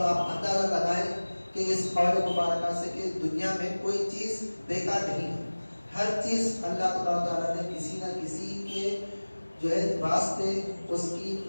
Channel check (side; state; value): both; inverted; correlation -1.00